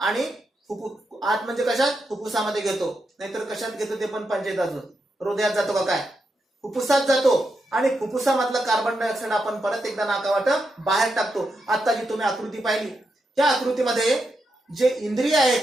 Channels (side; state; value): both; normal; correlation 0.84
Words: आणि आत म्हणजे कशात, फुफ्फुसामध्ये घेतो, नाहीतर कशात घेतो ते पण पंचायत अजून, हृदयात जातो का काय, फुफ्फुसात जातो. आणि फुफ्फुसामधलं कार्बन डायऑक्साईड आपण परत एकदा नाकावाट बाहेर टाकतो. आता जी तुम्ही आकृती पाहिली, त्या आकृतीमध्ये जे इंद्रिय